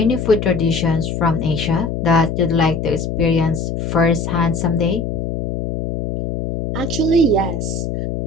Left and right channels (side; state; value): left; noise; hum, 3 dB below the sound